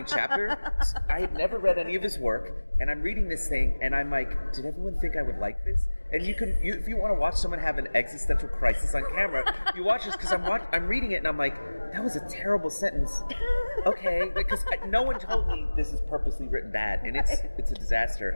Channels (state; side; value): inverted; both; correlation -1.00